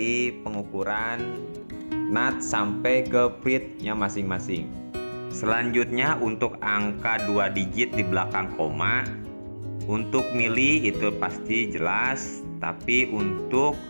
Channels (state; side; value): inverted; both; correlation -1.00